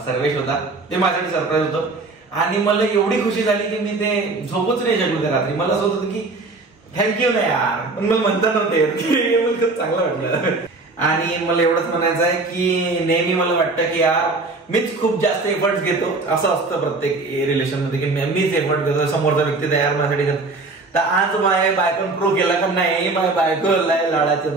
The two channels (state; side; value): quieter; left; 3.5 dB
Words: सर्वेश होता. ते माझ्यासाठी सरप्राईज होतं. आणि मला एवढी खुशी झाली की मी ते झोपूच नाही शकलो त्या रात्री. मला असं होतं की थँक्यू ना यार, पण मला म्हणता नव्हते. मला खूप चांगलं वाटलं. आणि मला एवढंच म्हणायचं आहे की नेहमी मला वाटतं की यार मीच खूप जास्त एफर्ट्स घेतो. असं असतं प्रत्येक रिलेशन मध्ये की मीच एफर्ट घेतो, समोरचा व्यक्ती तयार माझ्यासाठी करतो. तर आज माझ्या बायकोन प्रूव्ह केला का नाही, माझ्या बायको लाडाचे